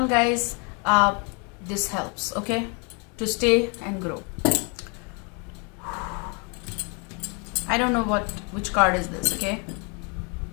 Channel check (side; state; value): right; quieter; 34.5 dB